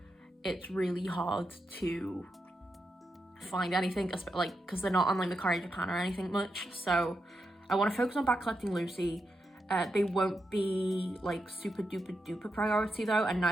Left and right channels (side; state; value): both; normal; correlation 0.86